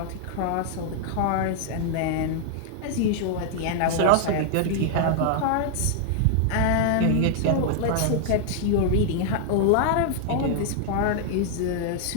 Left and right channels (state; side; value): different; both; correlation 0.00